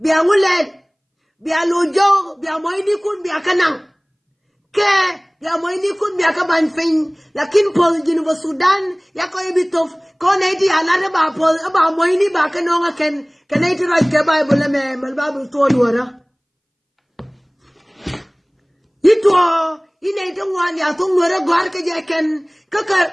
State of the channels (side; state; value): both; identical; correlation 1.00